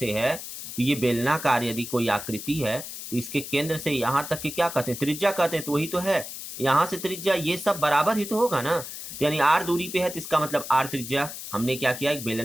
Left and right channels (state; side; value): noise; left; hiss, 10 dB below the sound